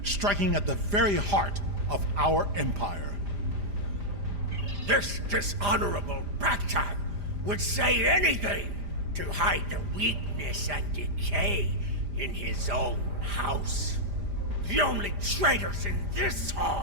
striking at the very heart of our empire. This dishonorable Backtag would say anything to hide the weakness and decay in his own house. The only traitors in this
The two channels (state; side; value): late; left; 5.0 ms